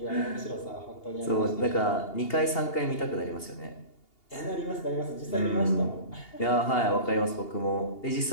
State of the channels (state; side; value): late; right; 2.8 ms